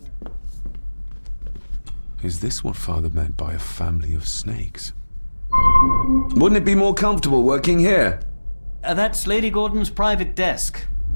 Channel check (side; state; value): both; inverted; correlation -1.00